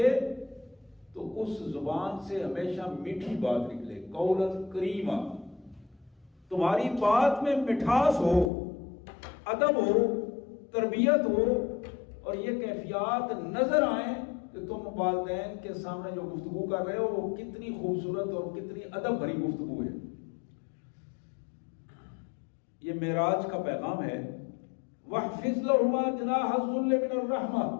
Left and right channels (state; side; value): drops out; right; at 8.5 s